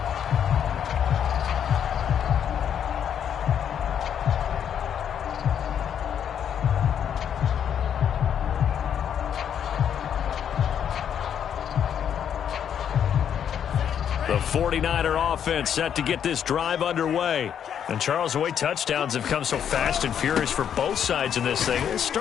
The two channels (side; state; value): right; quieter; 8.7 dB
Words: The 49er offense set to get this drive underway. And Charles, the way touchdowns have come so fast and furious for both sides in this thing, it's